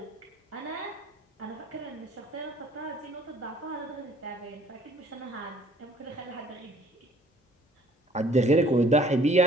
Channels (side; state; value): both; normal; correlation 0.57